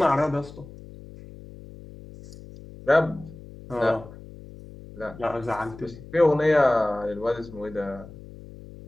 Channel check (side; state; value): left; noise; hum, 17 dB below the sound